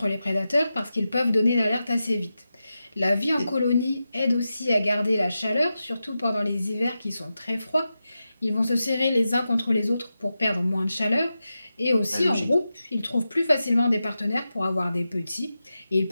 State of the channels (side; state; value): both; inverted; correlation -0.91